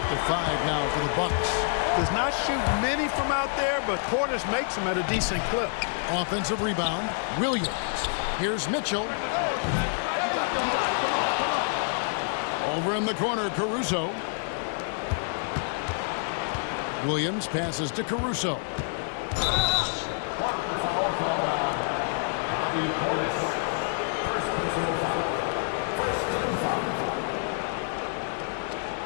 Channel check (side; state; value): right; silent; digital silence